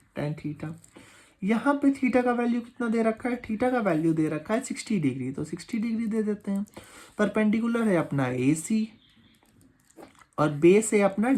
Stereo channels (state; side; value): identical; both; correlation 1.00